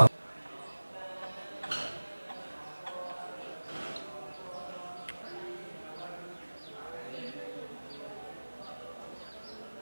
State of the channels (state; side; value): inverted; both; correlation -1.00